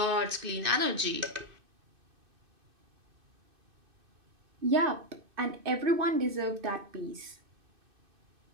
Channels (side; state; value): left; late; 2.6 ms